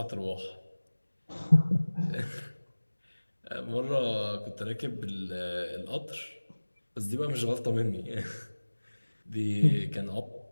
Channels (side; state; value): both; inverted; correlation -1.00